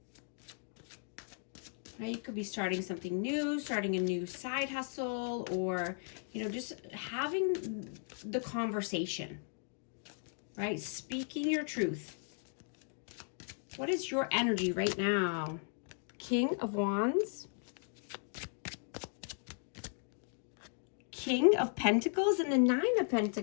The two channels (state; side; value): silent; right; 53 dB below the other